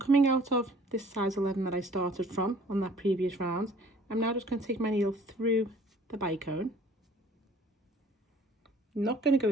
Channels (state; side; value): normal; both; correlation 0.53